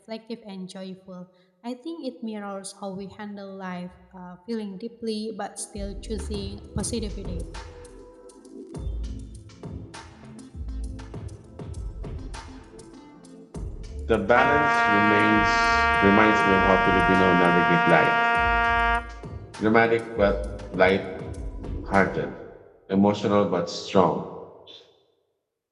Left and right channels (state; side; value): identical; both; correlation 1.00